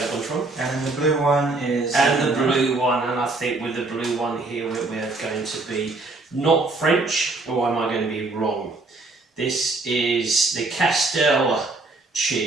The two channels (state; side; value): quieter; left; 3.3 dB